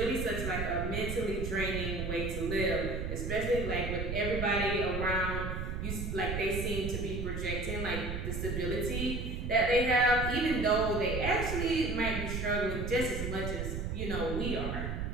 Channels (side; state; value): right; noise; rumble, 3 dB below the sound